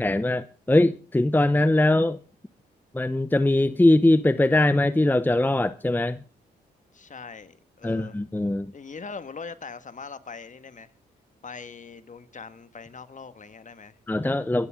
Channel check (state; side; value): normal; both; correlation 0.94